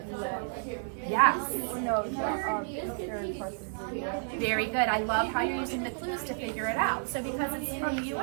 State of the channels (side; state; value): left; silent; digital silence